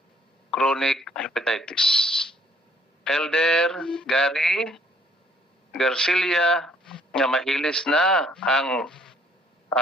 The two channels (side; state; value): both; normal; correlation 0.63